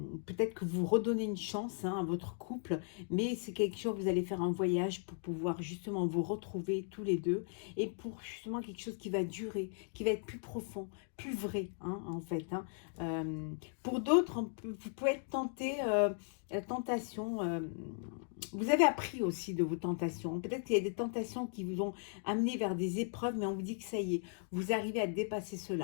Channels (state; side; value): silent; right; digital silence